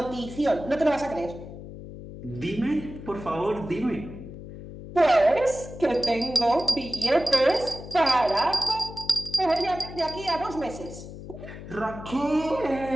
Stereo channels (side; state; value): left; noise; hum, 13 dB below the sound